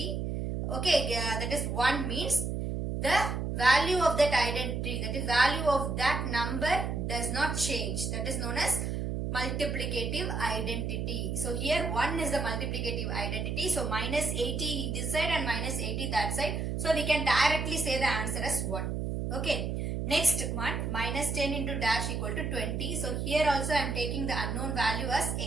okay, that is 1 means the value of that identity, that is value of that number does not change. That is known as multiplicative identity. So here 1 is the multiplicative identity. So minus 80 this side and minus 80 that side. So we can directly say the answer as 1. Okay. Next one, minus 10 into dash equal to 20. So here also I am taking the unknown value as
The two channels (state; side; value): noise; right; hum, 2 dB below the sound